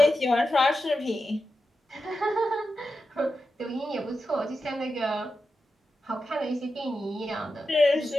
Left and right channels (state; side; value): normal; both; correlation 0.89